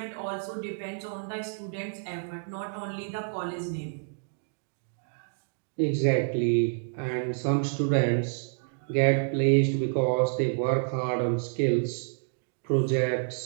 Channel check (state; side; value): silent; left; digital silence